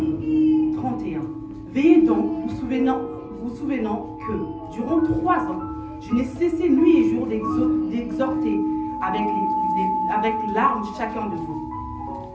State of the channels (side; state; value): both; identical; correlation 1.00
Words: 31. Veillez donc, vous souvenant que durant 3 ans, je n'ai cessé nuit et jour d'exhorter avec larmes chacun de vous.